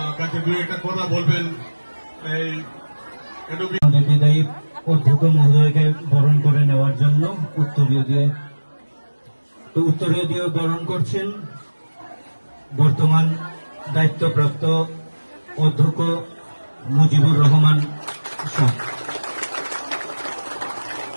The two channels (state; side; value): inverted; both; correlation -1.00